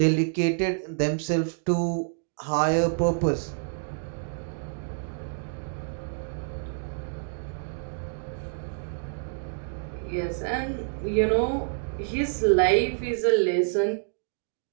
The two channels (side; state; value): left; silent; 60 dB below the other